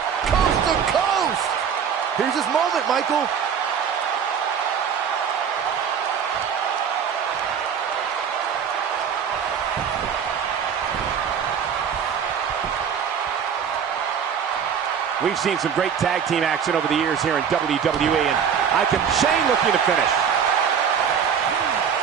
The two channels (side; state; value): left; quieter; 7.5 dB